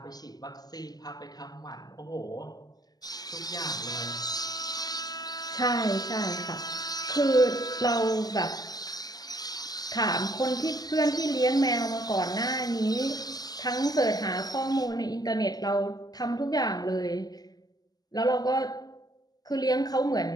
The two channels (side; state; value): right; late; 0.19 ms